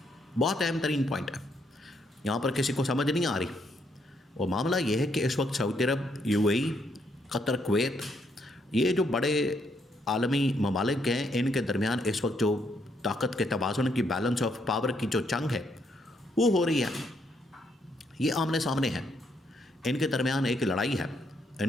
بہت اہم ترین پوائنٹ ہے، یہاں پر کسی کو سمجھ نہیں آ رہی۔ وہ معاملہ یہ ہے کہ اس وقت سعودی عرب، you a E, Qatar, Kuwait, یہ جو بڑے عالمی ممالک ہیں، ان کے درمیان اس وقت جو طاقت کے توازن کی، بیلنس آف پاور کی جو جنگ ہے وہ ہو رہی ہے، یہ آمنے سامنے ہے، ان کے درمیان ایک لڑائی ہے، ان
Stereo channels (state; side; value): normal; both; correlation 0.74